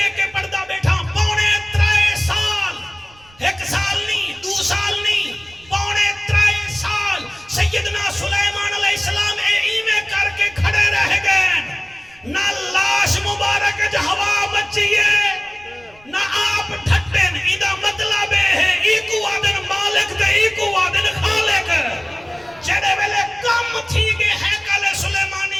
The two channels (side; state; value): right; noise; rumble, 27 dB below the sound